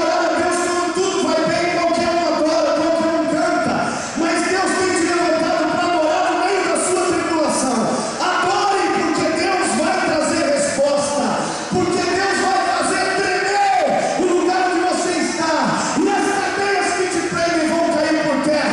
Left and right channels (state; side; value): identical; both; correlation 1.00